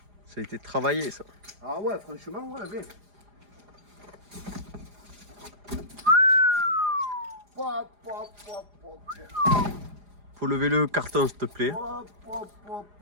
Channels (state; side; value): late; left; 4.9 ms